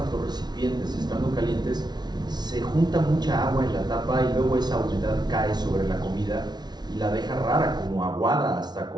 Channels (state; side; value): late; left; 0.20 ms